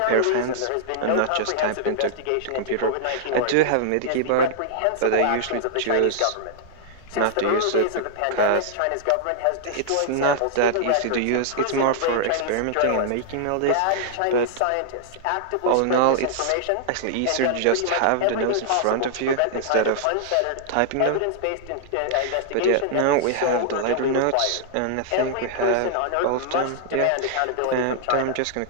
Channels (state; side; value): different; both; correlation -0.01